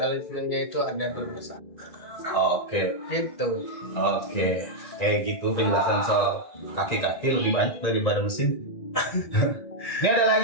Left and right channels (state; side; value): late; right; 2.2 ms